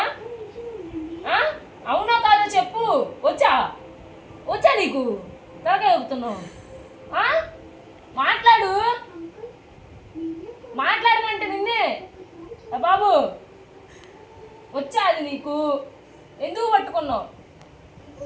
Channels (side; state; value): both; identical; correlation 1.00